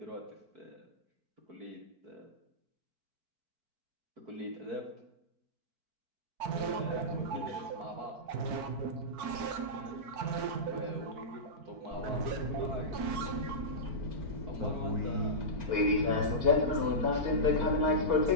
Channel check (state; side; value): late; left; 4.5 ms